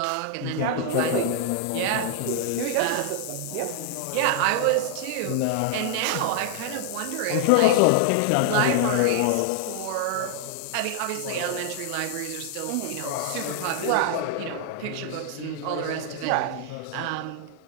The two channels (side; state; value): both; different; correlation 0.00